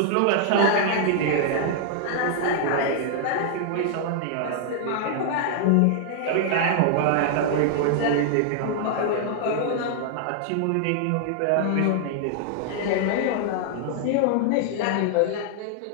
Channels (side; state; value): both; different; correlation -0.01